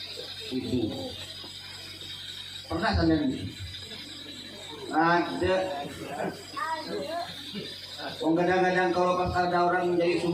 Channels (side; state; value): both; identical; correlation 1.00